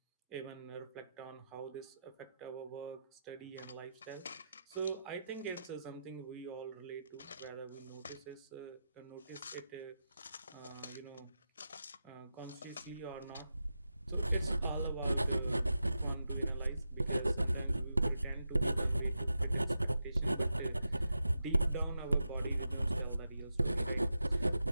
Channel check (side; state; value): both; inverted; correlation -0.89